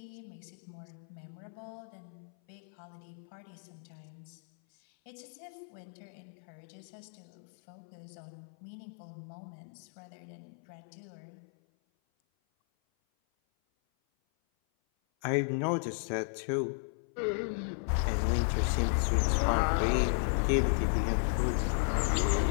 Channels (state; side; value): silent; right; 55 dB below the other